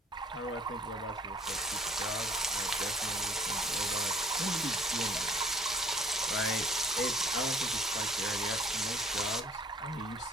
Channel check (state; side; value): normal; both; correlation 0.56